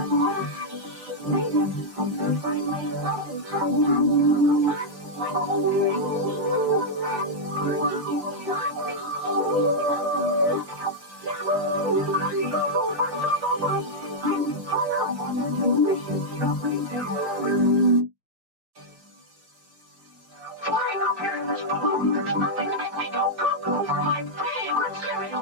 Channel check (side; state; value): left; late; 5.7 ms